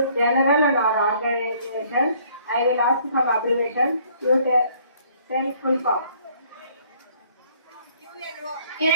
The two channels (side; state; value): both; inverted; correlation -0.61